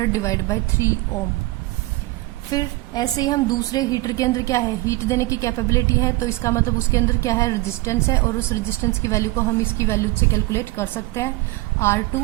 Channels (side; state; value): left; quieter; 20.5 dB